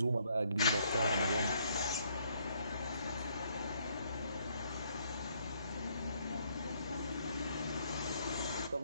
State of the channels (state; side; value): inverted; both; correlation -0.69